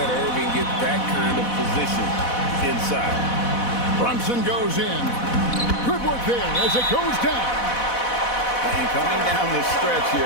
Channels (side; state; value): right; late; 4.1 ms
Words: Irving get that kind of position inside. Brunson goes in. Good work there as it goes down. And coming down the stretch